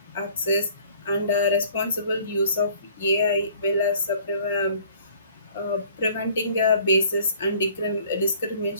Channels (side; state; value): both; inverted; correlation -0.54